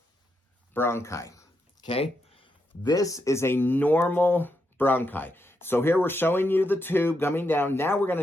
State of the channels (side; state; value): both; normal; correlation 0.82